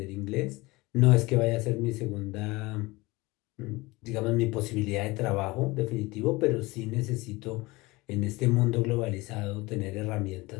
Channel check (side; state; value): right; quieter; 22.1 dB